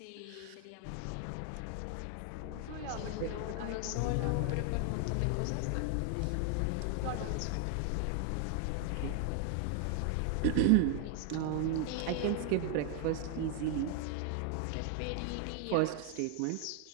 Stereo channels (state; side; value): different; both; correlation 0.00